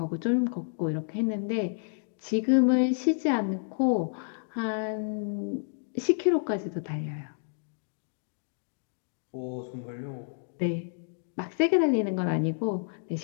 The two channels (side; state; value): right; silent; digital silence